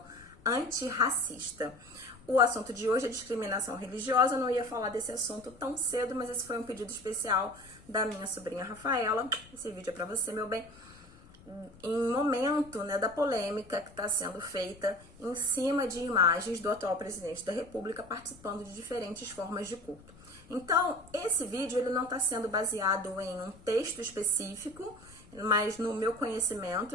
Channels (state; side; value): noise; left; rumble, 23 dB below the sound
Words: antirracista. O assunto de hoje é discriminação religiosa. Eu não ia falar desse assunto tão cedo, mas esse foi um pedido especial da minha sobrinha Rafaela. Esse vídeo é pra você, meu bem. Em momento, da polêmica que está sendo feita em cima de imagens do atual presidente da República participando de diferentes formas de culto. Então, esse vídeo ele não está sendo baseado em um texto específico, mas no meu